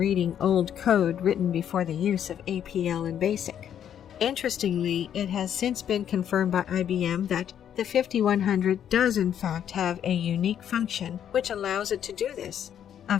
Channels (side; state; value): right; quieter; 9.5 dB